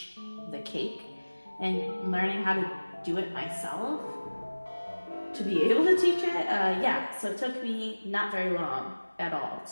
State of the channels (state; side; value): inverted; both; correlation -1.00